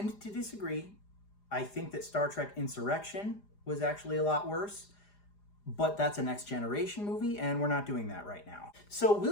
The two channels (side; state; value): right; late; 4.9 ms